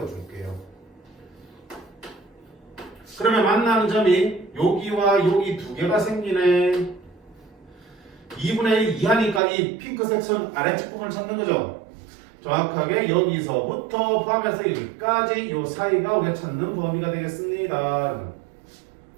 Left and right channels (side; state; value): left; drops out; at 9.4 s